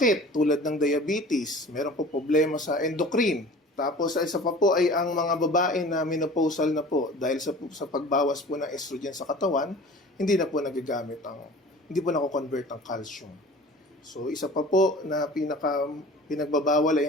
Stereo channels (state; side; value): normal; both; correlation 0.42